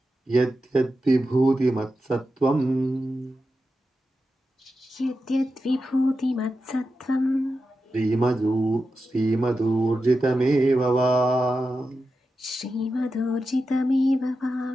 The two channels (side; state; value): both; normal; correlation 0.90